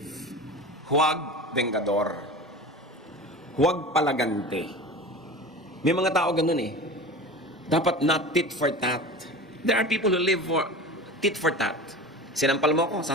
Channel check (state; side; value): normal; both; correlation 0.33